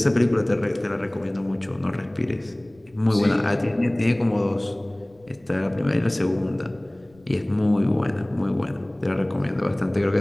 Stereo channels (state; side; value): noise; left; rumble, 30 dB below the sound